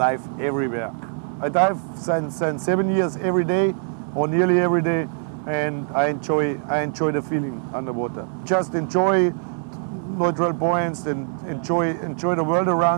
everywhere. I dive since 7 years every day or nearly every day, and I enjoy the feeling underwater. Just enjoy neutral points and enjoy the world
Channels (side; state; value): left; silent; 64 dB below the other